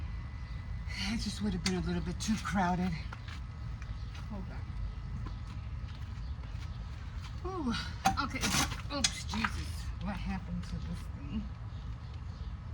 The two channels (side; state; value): both; identical; correlation 1.00